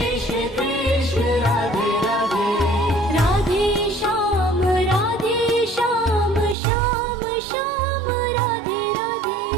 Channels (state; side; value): drops out; left; at 6.6 s